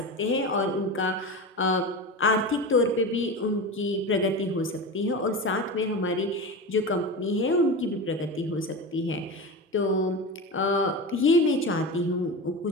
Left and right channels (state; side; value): normal; both; correlation 0.25